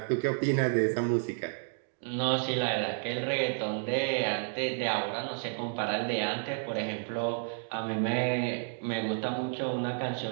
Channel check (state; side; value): silent; left; digital silence